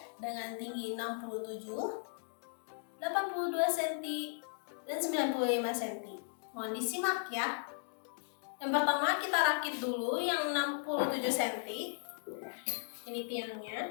dengan tinggi 67, 82 cm, dan 95 cm. Mohon disimak ya. Yang pertama kita rakit dulu yang 67 cm. Ini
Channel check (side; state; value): right; silent; digital silence